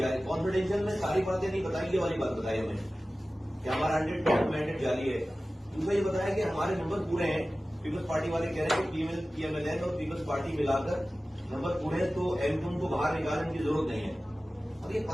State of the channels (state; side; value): normal; both; correlation 0.96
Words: कॉन्फिडेंशियल में सारी बातें नहीं बताई, ये वाली बात बताई हमें कि हमारा 100% मैंडेट जारी है। दूसरा ये बताया कि हमारे नंबर पूरे हैं। पीपल्स पार्टी वाले कह रहे हैं कि पीएमएलएन और पीपल्स पार्टी मिलाकर नंबर पूरे हैं, तो एमक्यूएम को बाहर निकालने की जरूरत नहीं है। अब ये